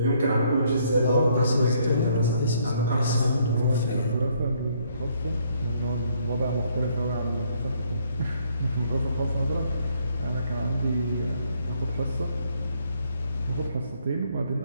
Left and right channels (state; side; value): inverted; both; correlation -0.68